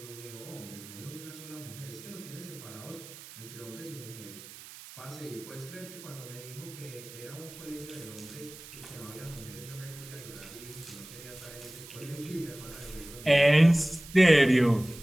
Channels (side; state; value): right; noise; hiss, 16 dB below the sound